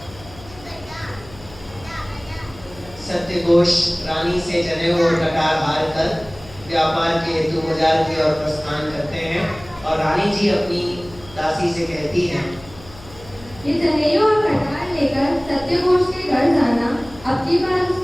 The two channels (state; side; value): noise; left; hum, 20 dB below the sound